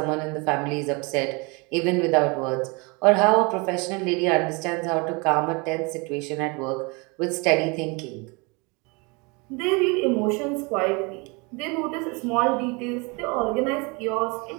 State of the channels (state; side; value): quieter; left; 29.2 dB